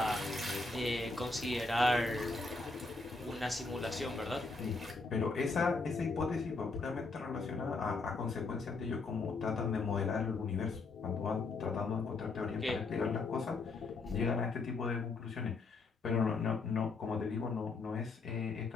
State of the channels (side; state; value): right; quieter; 3.7 dB